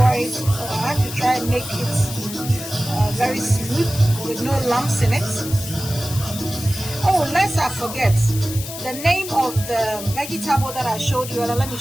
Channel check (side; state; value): left; noise; hiss, 10 dB below the sound